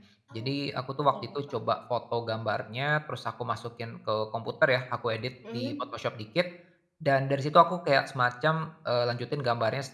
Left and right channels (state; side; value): identical; both; correlation 1.00